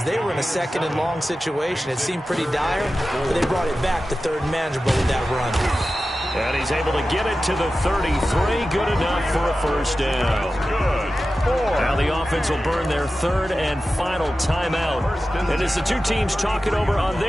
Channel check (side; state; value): both; normal; correlation 0.94